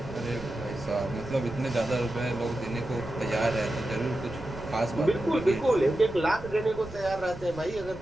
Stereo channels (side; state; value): right; noise; rumble, 16 dB below the sound